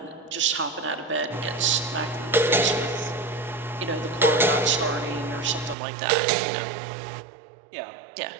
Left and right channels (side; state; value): left; drops out; at 5.8 s